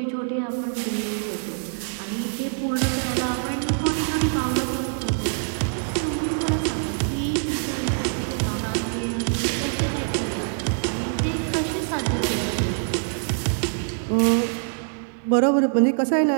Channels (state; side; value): silent; left; digital silence